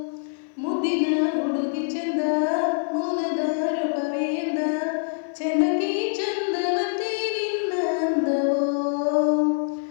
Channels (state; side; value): silent; right; 56 dB below the other